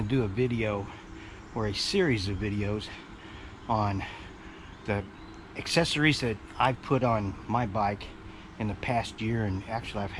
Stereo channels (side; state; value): both; identical; correlation 1.00